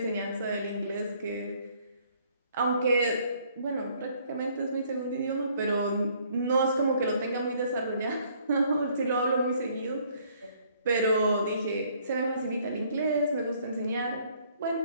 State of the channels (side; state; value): both; inverted; correlation -0.63